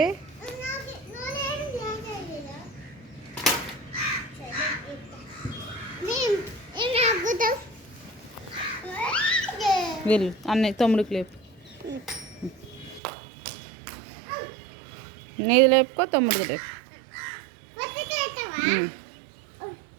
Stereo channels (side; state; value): left; drops out; at 13.0 s